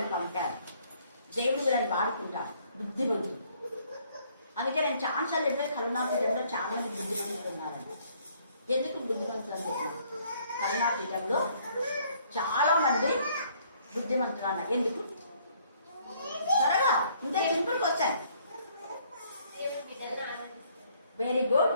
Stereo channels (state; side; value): inverted; both; correlation -0.63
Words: పంపారు, దేవుడు వీళ్ళని వాడుకుంటారు. బుద్ధిమంతులు. అందుకే నేను ఛాన్సార్లు చెప్పేది కరుణాపీఠంలో చాలా మంది బుద్ధిమంతులు ఉన్నారండి. ఎందుకు బుద్ధిమంతులు అని చెప్పాను? కరుణాపీఠంలో చాలా మంది బుద్ధిమంతులు అన్నారు. ఎందుకు? త్వరగా ఇంత సింపుల్కి వచ్చాను. Very good.